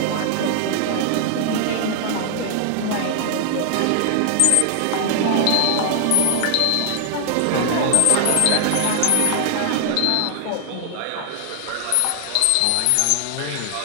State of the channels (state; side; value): different; both; correlation 0.00